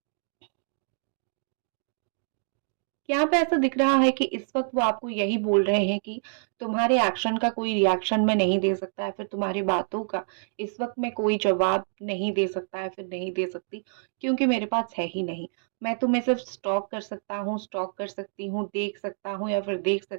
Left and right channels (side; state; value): left; silent; digital silence